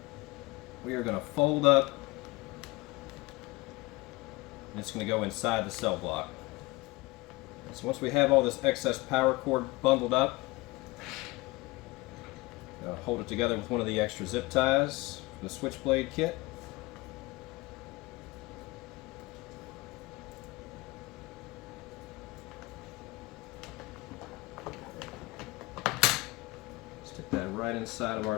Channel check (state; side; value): quieter; right; 22.4 dB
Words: we are going to fold up, and it's going to go inside the CellBlok. So once we have all this excess power cord bundled up, hold it together with one of the extra zip ties from the SwitchBlade kit. Stick that right inside of our